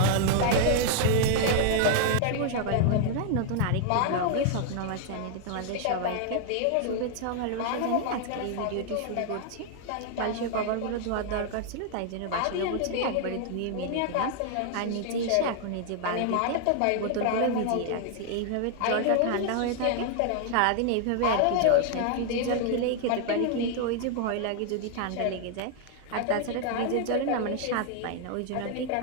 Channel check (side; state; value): both; different; correlation 0.00